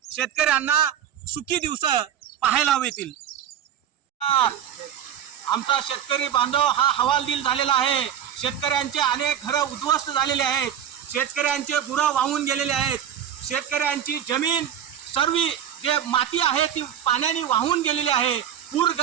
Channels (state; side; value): quieter; left; 9.7 dB